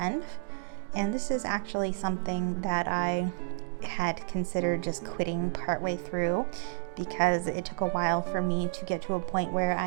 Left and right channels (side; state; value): left; silent; digital silence